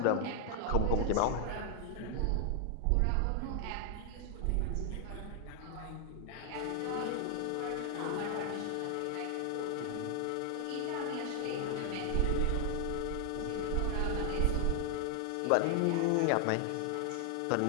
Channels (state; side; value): different; both; correlation 0.00